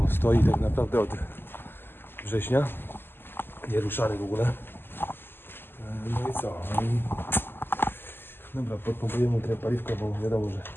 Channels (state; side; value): late; right; 0.10 ms